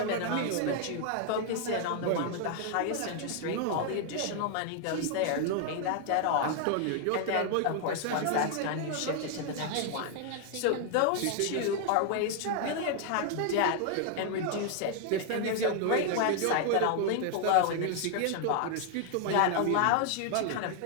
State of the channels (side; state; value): both; different; correlation 0.00